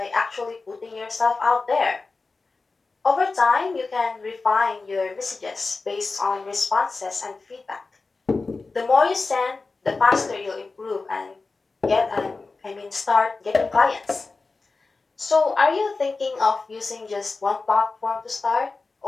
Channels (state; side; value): quieter; right; 3.9 dB